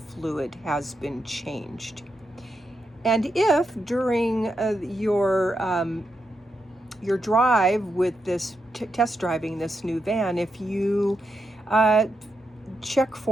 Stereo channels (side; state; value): both; normal; correlation 0.84